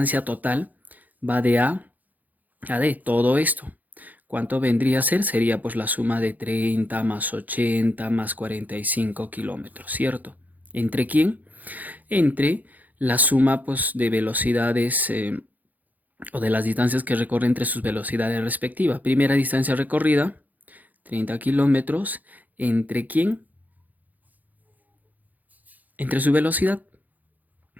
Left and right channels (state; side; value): late; left; 0.082 ms